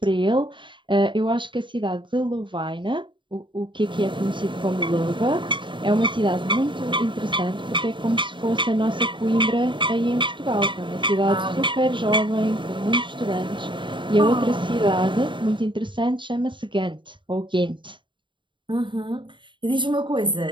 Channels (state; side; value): late; left; 0.23 ms